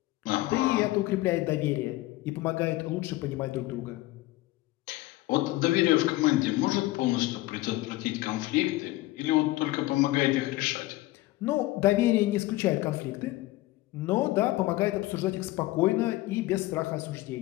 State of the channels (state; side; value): quieter; right; 18.1 dB